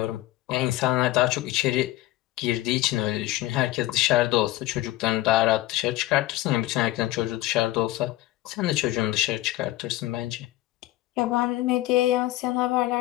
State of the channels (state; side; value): quieter; right; 16.8 dB